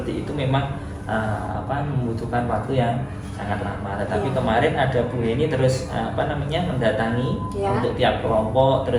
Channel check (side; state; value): both; identical; correlation 1.00